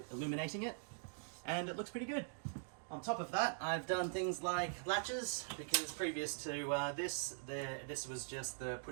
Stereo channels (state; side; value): silent; left; digital silence